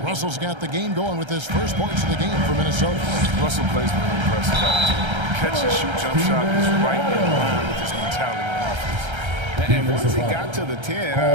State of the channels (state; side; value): late; left; 1.3 ms